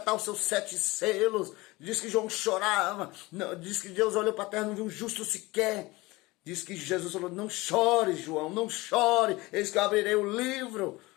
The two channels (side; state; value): right; quieter; 21.6 dB